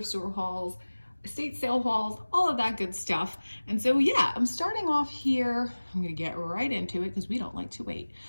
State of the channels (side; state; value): both; inverted; correlation -1.00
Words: store hauls, estate sale hauls, all of that good stuff. And so yeah, I'm starting off here. I'm gonna get right into it because we don't like to wait.